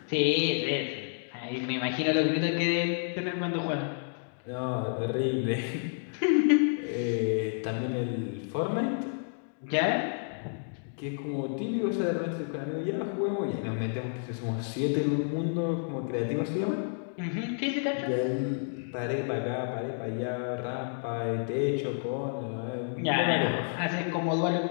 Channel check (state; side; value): silent; right; digital silence